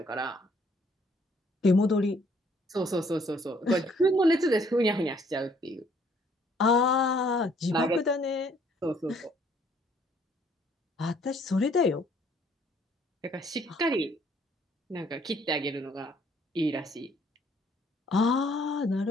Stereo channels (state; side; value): normal; both; correlation 0.63